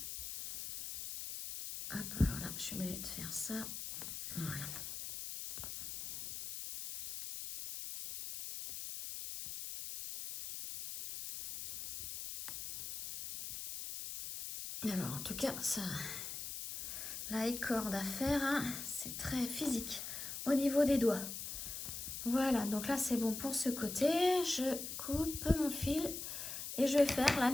Hop, alors là, je suis obligée de faire ça. Voilà. Alors, en tout cas, ça, la corde à faire, hein, c'est très physique au niveau des doigts. Voilà, donc là, c'est bon pour ce côté. Je coupe mon fil et je vais faire la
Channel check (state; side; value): noise; left; hiss, 6 dB below the sound